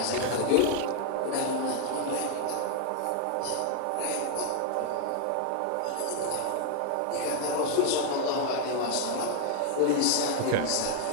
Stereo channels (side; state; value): both; different; correlation 0.00